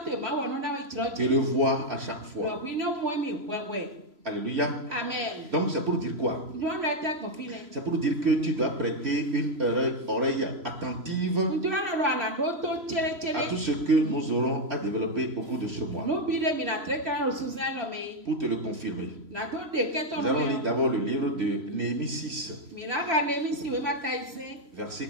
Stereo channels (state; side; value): late; left; 3.0 ms